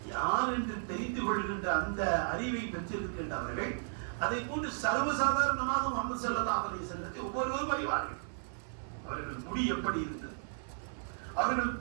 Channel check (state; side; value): silent; left; 55 dB below the other